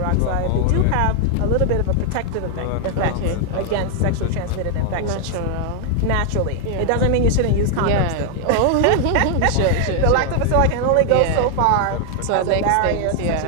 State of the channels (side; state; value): both; different; correlation 0.00